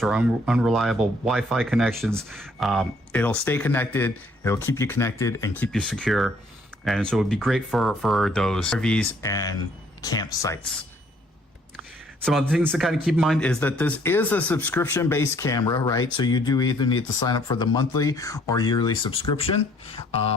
or unreliable Wi-Fi connections. It'll stay connected. It'll keep you connected and keep you secure. And so it would be great for those RVs and campsites. Some other things to kind of keep in mind is that this is a subscription-based camera, right? So you do either need to sign up for the monthly or yearly subscription.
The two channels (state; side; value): normal; both; correlation 0.63